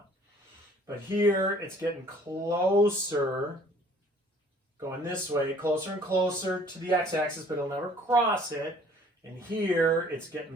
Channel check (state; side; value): normal; both; correlation 0.55